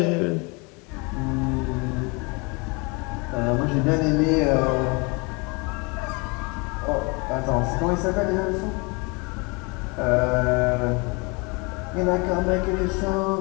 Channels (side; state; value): right; quieter; 29.6 dB